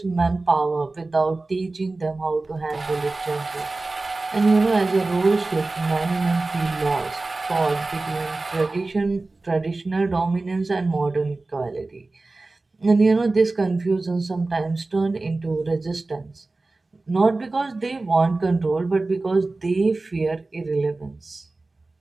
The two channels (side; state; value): left; quieter; 3.3 dB